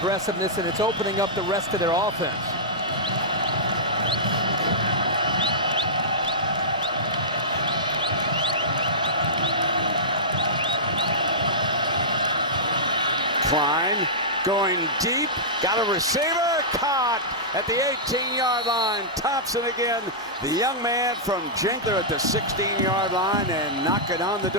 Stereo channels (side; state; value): both; normal; correlation -0.15